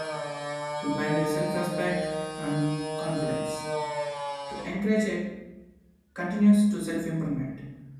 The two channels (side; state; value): both; identical; correlation 1.00